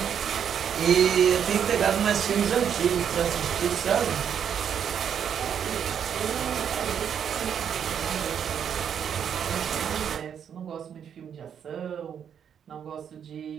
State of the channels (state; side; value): quieter; left; 8.3 dB